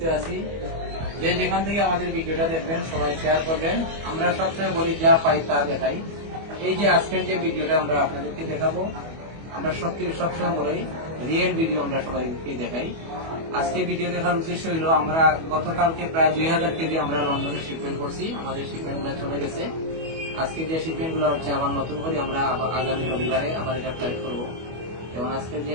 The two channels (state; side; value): late; left; 25 ms